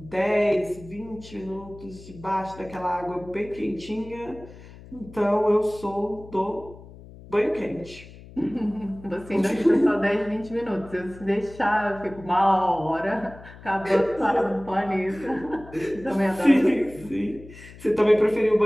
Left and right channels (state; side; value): noise; left; hum, 18 dB below the sound